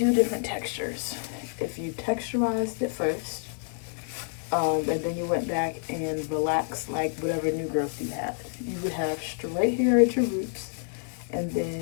different textures. If you texturized it first, and then you went back and relaxed like whatever new growth you had, you would have straight hair at your roots and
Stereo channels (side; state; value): right; silent; 58 dB below the other